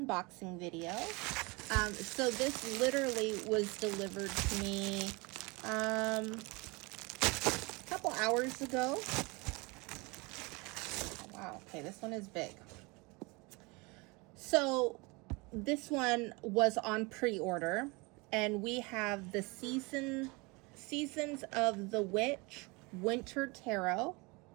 video. So this literally was delivered to me a couple hours ago. Oh, wow, okay, this one is big. So this one was on pre-order, and we have the Seasons of the Witch Winter Tarot.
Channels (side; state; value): left; quieter; 26.8 dB